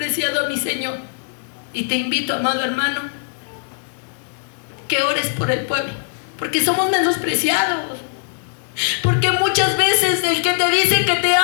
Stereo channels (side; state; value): right; silent; digital silence